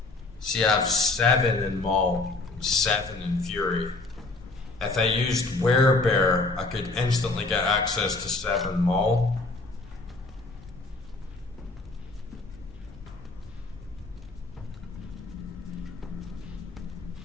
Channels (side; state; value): right; quieter; 3.4 dB